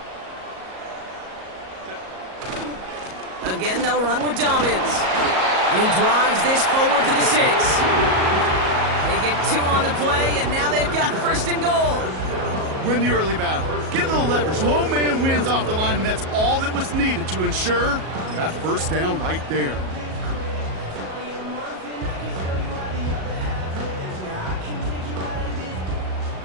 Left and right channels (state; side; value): late; left; 37 ms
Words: Again, they'll run with Dobbins. And he drives this forward to the 6. They get 2 on the play, and now they've got first and goal. Win the early battle. Get a little leverage. Low man wins off the line, and that's all that was needed to ensure that first down right there.